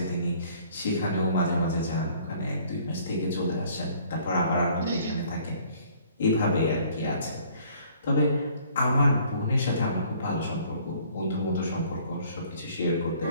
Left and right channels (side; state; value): both; inverted; correlation -0.57